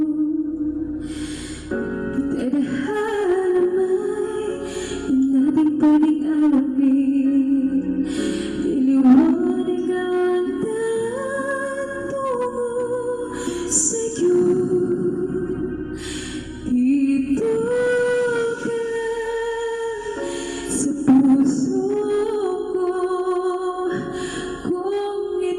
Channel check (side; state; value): both; identical; correlation 1.00